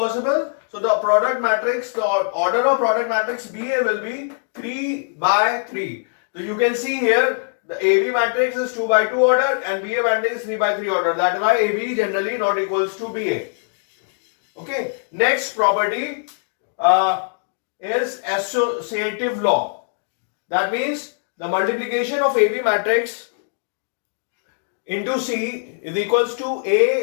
So the product matrix, the order of product matrix BA will be 3 by 3. So you can see here the AB matrix is 2 by 2 order and BA matrix is 3 by 3 order. That is why AB generally not equals to BA. Okay. Next property is associative law. That means the multiplication of AB matrix into C is equals to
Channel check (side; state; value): right; silent; digital silence